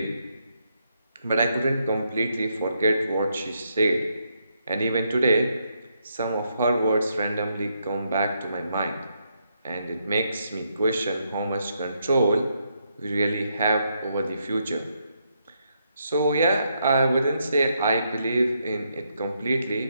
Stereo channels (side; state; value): both; inverted; correlation -0.78